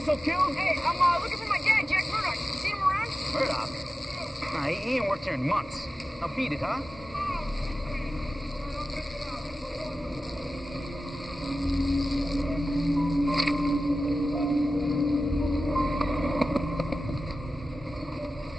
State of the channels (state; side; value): normal; both; correlation 0.94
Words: Killed? Hey, I'm looking for my dad, Jack Murdoch. You seen him around? Murdoch? Nah, he ain't worked here in months. Now beat it, huh?